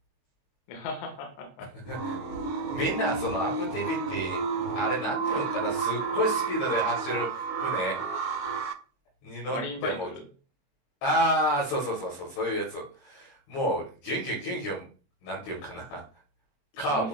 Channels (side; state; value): right; late; 22 ms